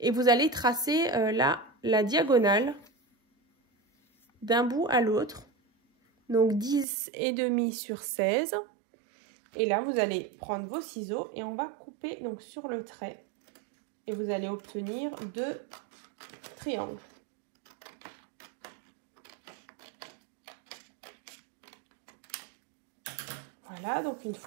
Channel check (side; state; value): left; drops out; at 6.9 s